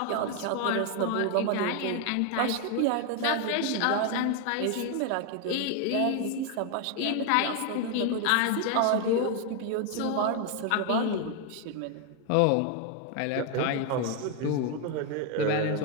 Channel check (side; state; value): both; different; correlation 0.01